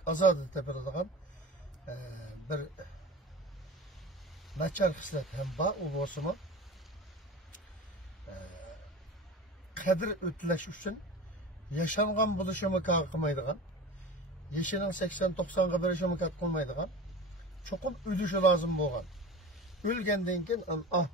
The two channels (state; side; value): normal; both; correlation 0.34